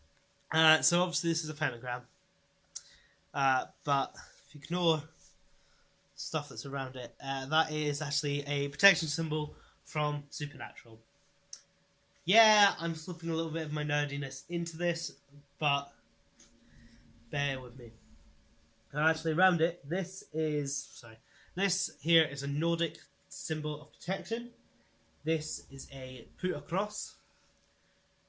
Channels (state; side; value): identical; both; correlation 1.00